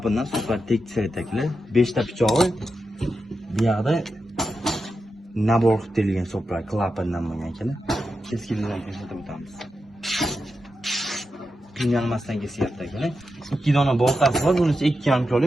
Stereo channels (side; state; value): both; normal; correlation 0.88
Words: super tekis aytaklar. 5 ta pichog'i bu yoqda nabor qilib terilgan soplar klapindan bo'lgan ekan. Keskinlikdan ko'rsatib o'tamiz. Qiynalmasdan kesyapti ekan. 2 dona boltasi bor, bunisi 2,5